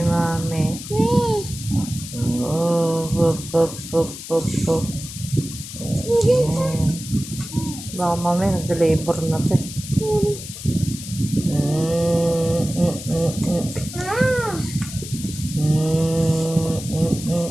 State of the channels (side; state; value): left; noise; hiss, 11 dB below the sound